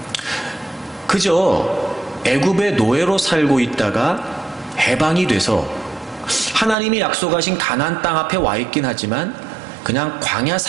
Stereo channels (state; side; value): drops out; left; at 6.8 s